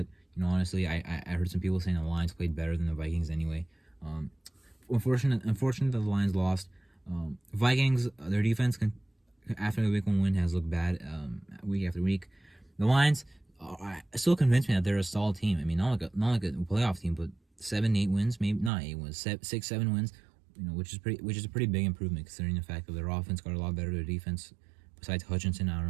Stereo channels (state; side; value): drops out; left; at 18.7 s